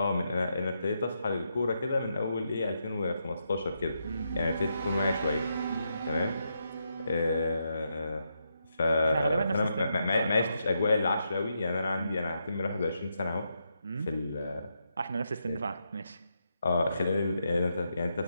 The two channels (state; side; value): inverted; both; correlation -0.82